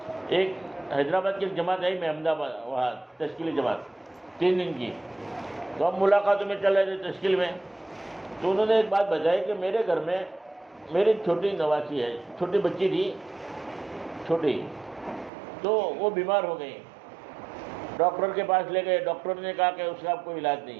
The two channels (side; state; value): left; drops out; at 15.3 s